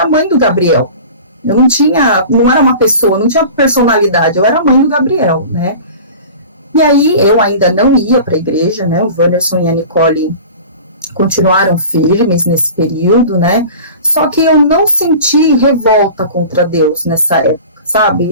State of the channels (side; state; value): both; inverted; correlation -0.38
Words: mãe do Gabriel. Eu não era uma pessoa, não tinha personalidade. Eu era mãe do Gabriel, né? E aí, eu ainda não ia para a igreja, né, o Wanderson e a Nicole continuaram firmes nesse período, né, só que eu não senti revolta contra Deus nessa época,